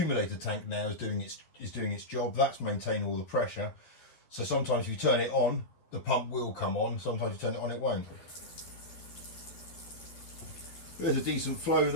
tank now is doing its job. That's maintaining all the pressure. So sometimes if you turn it on, the pump will come on. Sometimes you turn it on, it won't. There's a decent flow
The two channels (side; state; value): right; late; 12 ms